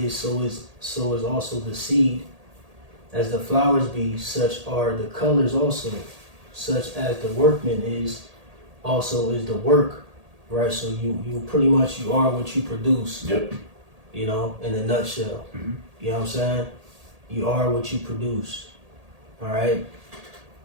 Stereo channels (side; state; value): left; late; 1.8 ms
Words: so is also the seed. As the flowers be, such are the colors also. Such as the workman is, also is the work, right? So you pretty much, you are what you produce. Yep. You know, in a nutshell. You know what I'm saying? You are what you produce. All right?